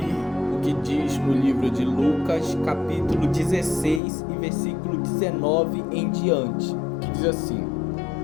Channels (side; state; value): right; drops out; at 4.0 s